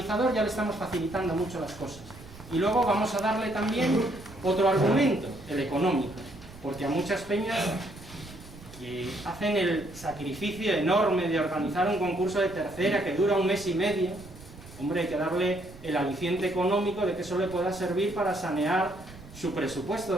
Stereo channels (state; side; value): noise; right; rumble, 18 dB below the sound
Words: ya le estamos facilitando mucho las cosas. Y luego vamos a darle también otro argumento, el económico, porque a muchas peñas que hacen el sacrificio enorme de organizar un concurso de tercera que dura 1 mes y medio, hombre, hay que darle el aliciente económico de que eso le pueda servir para sanear su